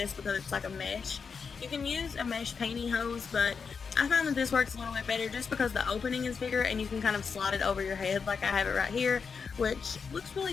because it's like a mesh. You can use a mesh pantyhose, but I find that this works a little bit better just because the opening is bigger and you can kind of slide it over your head like I have it right here, which looks really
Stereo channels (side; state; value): right; quieter; 5.7 dB